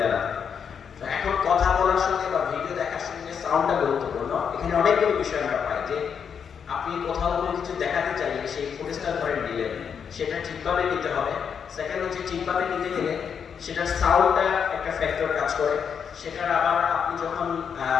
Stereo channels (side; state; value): right; quieter; 7.1 dB